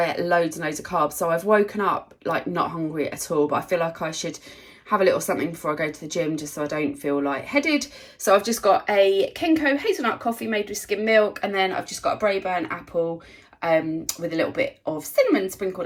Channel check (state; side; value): identical; both; correlation 1.00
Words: ate loads and loads of carbs. So I've woken up not hungry at all. But I feel like I should have a little something before I go to the gym, just so I don't feel lightheaded. So I've just got a Kenko hazelnut coffee made with skim milk, and then I've just got a Braeburn apple. With a little bit of cinnamon sprinkled